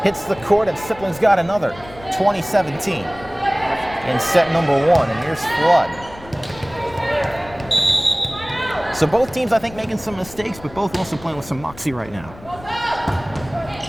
Hits the court, and Sipling's got another 2017 in set number 1. And here's Flood. So both teams, I think, making some mistakes, but both also playing with some moxie right now.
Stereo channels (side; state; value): left; noise; rumble, 19 dB below the sound